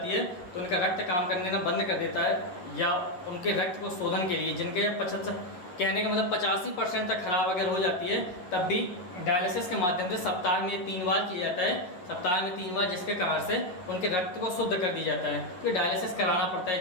है तो उनका रक्त काम करने का बंद कर देता है, या उनके रक्त को शोधन के लिए जिनके 75 कहने का मतलब 85% तक खराब अगर हो जाती है, तब भी डायलिसिस के माध्यम से सप्ताह में 3 बार किया जाता है, सप्ताह में 3 बार, जिसके कारण से उनके रक्त को शुद्ध कर दिया जाता है। तो डायलिसिस कराना पड़ता है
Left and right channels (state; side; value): late; right; 11 ms